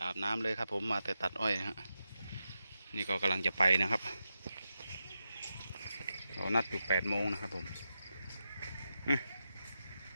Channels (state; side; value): inverted; both; correlation -0.89